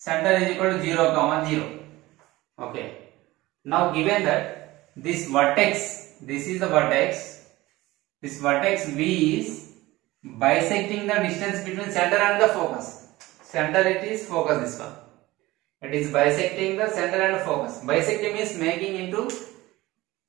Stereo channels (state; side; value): quieter; left; 18.9 dB